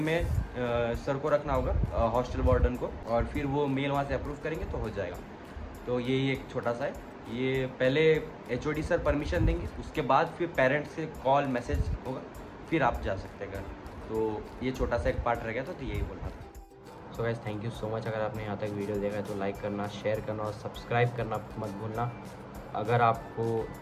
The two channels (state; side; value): identical; both; correlation 1.00